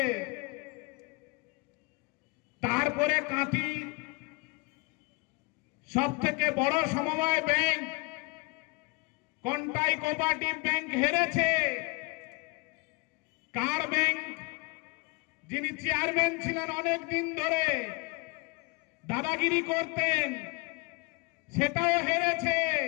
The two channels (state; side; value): quieter; right; 28.6 dB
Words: তারপরে কাঁথি সব থেকে বড় সমবায় ব্যাংক কন্টাই কোঅপারেটিভ ব্যাংক হেরেছে। কার ব্যাংক, যিনি চেয়ারম্যান ছিলেন অনেক দিন ধরে, দাদাগিরি করতেন, সেটাও হেরেছে।